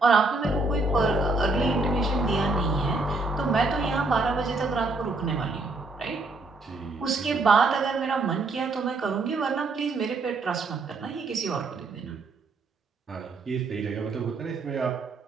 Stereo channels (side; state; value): left; quieter; 3.4 dB